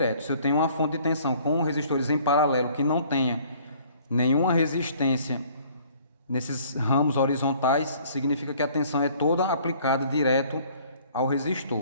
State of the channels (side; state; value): both; inverted; correlation -0.56